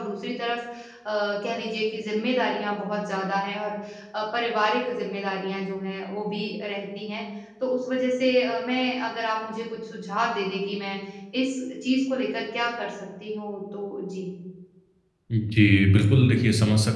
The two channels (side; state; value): both; identical; correlation 1.00